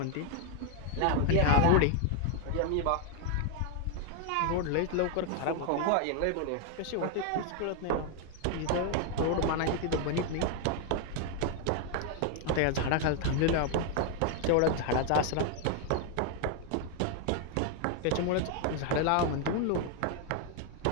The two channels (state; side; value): different; both; correlation 0.01